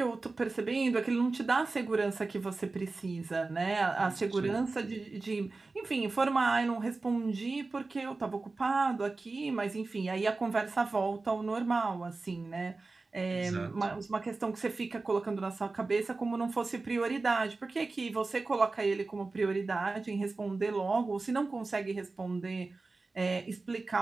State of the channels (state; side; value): quieter; left; 3.6 dB